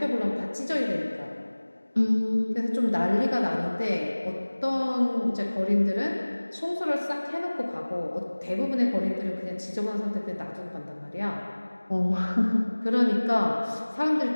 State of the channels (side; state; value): both; inverted; correlation -1.00